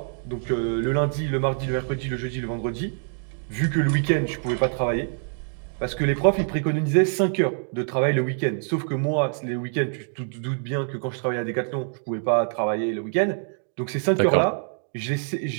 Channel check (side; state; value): left; silent; 62 dB below the other